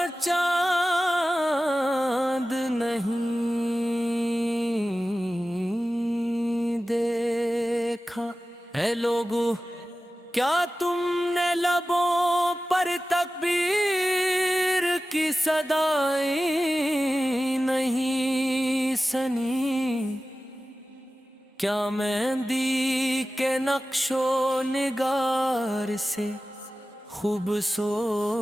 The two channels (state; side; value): normal; both; correlation 0.95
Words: چاند نہیں دیکھا۔ اے لوگو کیا تم نے لبوں پر تکبیر کی صدائیں نہیں سنی؟ کیا مہندی کے نقش و نگار سے